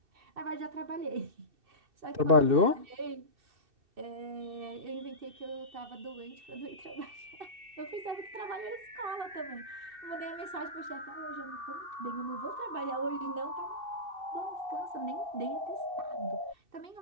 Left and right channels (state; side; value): late; left; 2.6 ms